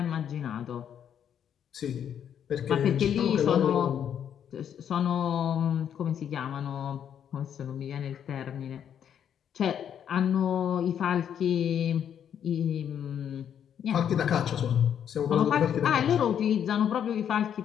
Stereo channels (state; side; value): quieter; right; 8.9 dB